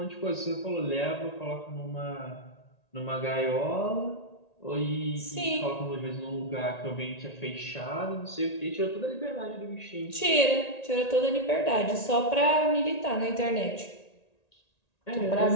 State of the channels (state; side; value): late; right; 1.9 ms